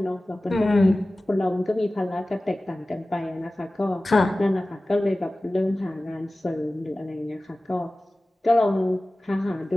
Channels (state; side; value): normal; both; correlation 0.97